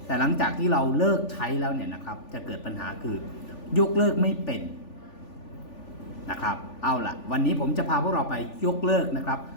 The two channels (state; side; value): late; right; 3.4 ms